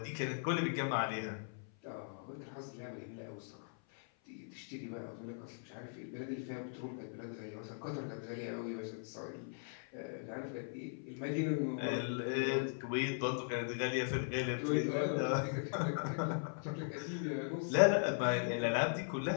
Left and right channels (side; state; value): right; silent; 52 dB below the other